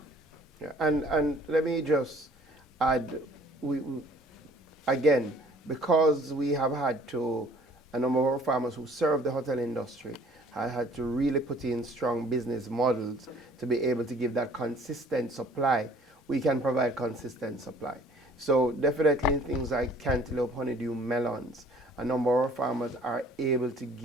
Yeah, and let me just add, we again, because we have had to, a number of our farmers who serve the hotel industry have had to really put in strong business models to be able to give that consistent supply. We can provide consistent supply. So definitely things like cantaloupe, honeydew, melons, a number of our farmers are able to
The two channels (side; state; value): both; normal; correlation 0.54